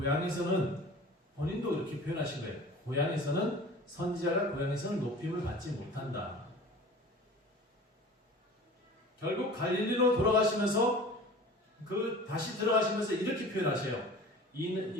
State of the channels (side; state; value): both; normal; correlation 0.41